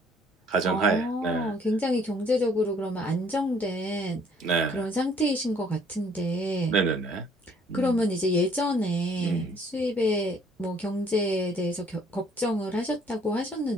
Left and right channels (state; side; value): normal; both; correlation 0.60